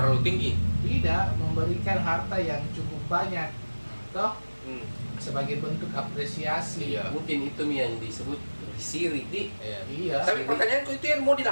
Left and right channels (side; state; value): both; inverted; correlation -1.00